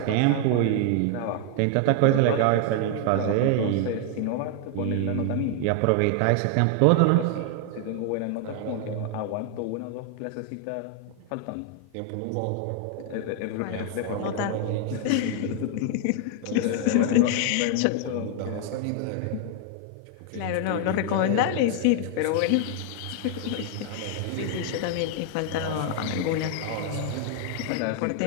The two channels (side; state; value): both; different; correlation 0.00